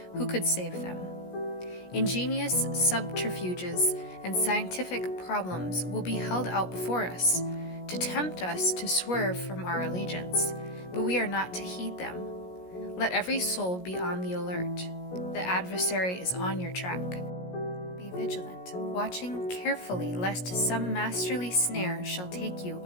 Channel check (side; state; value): right; late; 17 ms